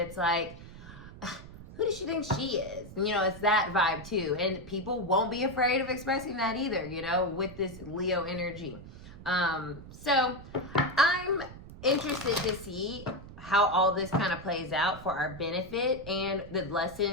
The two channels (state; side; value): noise; right; rumble, 15 dB below the sound